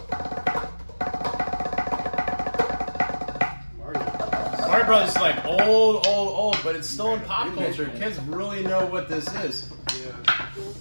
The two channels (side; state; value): both; inverted; correlation -1.00